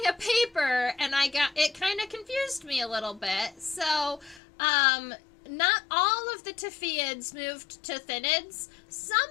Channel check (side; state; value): right; drops out; at 4.4 s